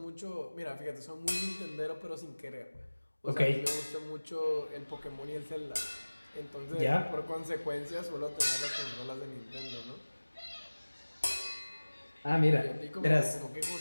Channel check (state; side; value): inverted; both; correlation -1.00